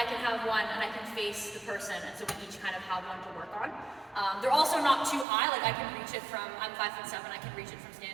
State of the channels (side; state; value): left; drops out; at 5.2 s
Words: can have one and I can face the person, and so we each kind of have one to work on. They're also not too high, like I can reach it from, I'm 5'7", I can reach it from